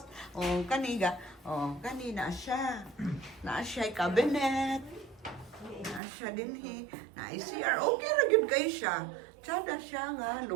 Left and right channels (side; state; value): left; drops out; at 6.0 s